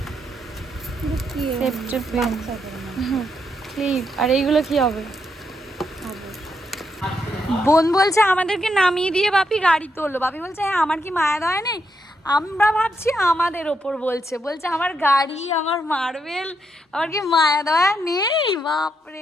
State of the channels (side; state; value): both; normal; correlation 0.80